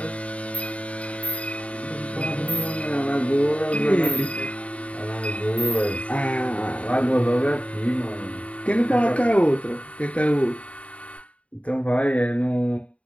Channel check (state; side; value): late; right; 0.065 ms